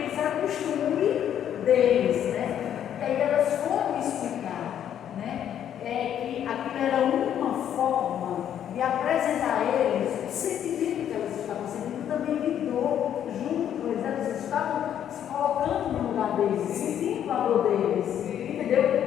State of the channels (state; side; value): quieter; right; 9.9 dB